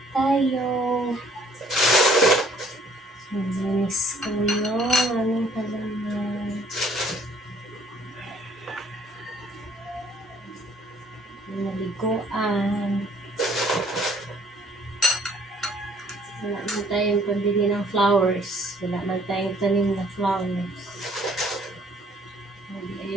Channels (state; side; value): normal; both; correlation 0.59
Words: tayo. Linis ko yung aming halaman. Naliguan. Wala man tayong pambili ng flowers. Wala man tayong tanim na flowers.